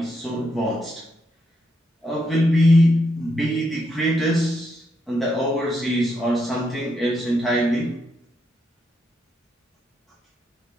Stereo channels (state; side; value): normal; both; correlation 0.79